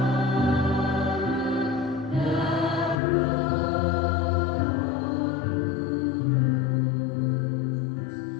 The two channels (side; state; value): right; drops out; at 3.0 s